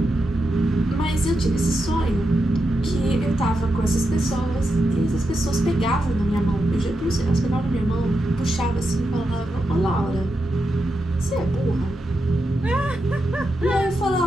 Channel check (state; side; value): normal; both; correlation 0.86